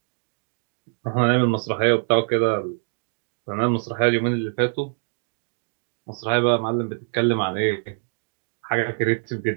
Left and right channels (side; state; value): left; silent; digital silence